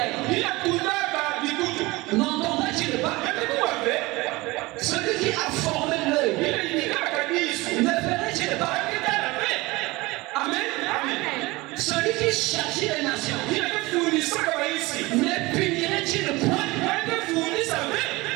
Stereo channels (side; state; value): left; quieter; 21.9 dB